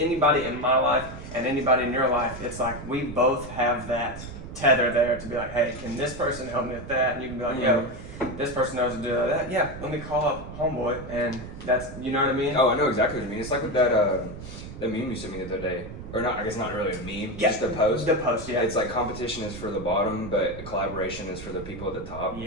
in my life and anybody in your life, it's like we both have that tether there to be like, hey, can this person help me with that? And you can be like, yo, this person knows to do that. Yeah, let me call up homeboy, and that's, you know what I mean? Oh, I know exactly what you mean. It's like with that meme you sent me the other day, or not. I guess not really a meme. Yeah. Just a post. The post, yeah. It's like competition is for the bottom, but collaboration is for the people at the top.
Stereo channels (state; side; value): noise; right; rumble, 12 dB below the sound